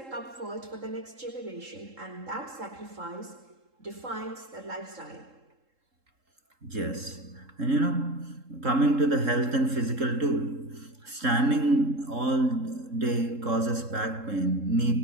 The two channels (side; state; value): left; late; 3.7 ms